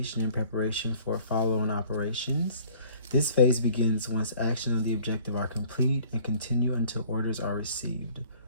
and preparation for follow-on operations. This phase begins once action on the objective are complete and continue until orders are received.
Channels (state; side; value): inverted; both; correlation -0.52